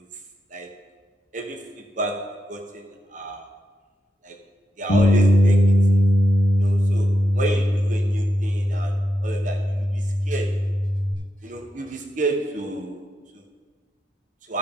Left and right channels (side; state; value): both; normal; correlation 0.86